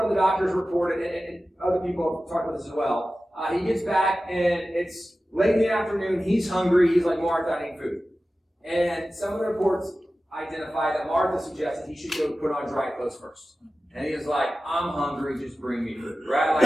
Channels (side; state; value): both; normal; correlation 0.95